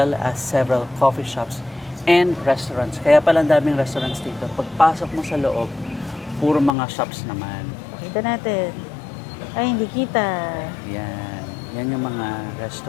as several coffee shops and restaurants. Kaya pala ang daming restaurants dito. Pagpasok mo sa loob, puro mga shops naman. Pakita natin. Ay, hindi kita. Yan. Yan yung mga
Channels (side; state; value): right; drops out; at 6.7 s